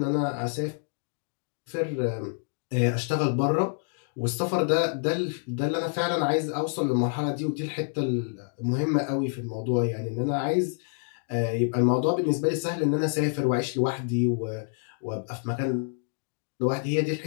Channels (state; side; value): silent; right; 59 dB below the other